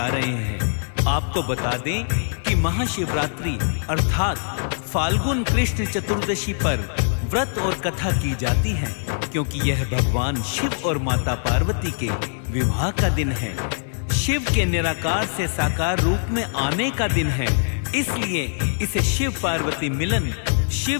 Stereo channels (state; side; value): silent; right; 64 dB below the other